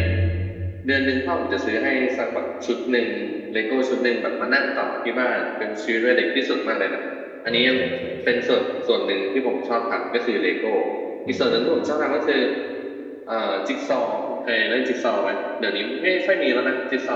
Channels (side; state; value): both; identical; correlation 1.00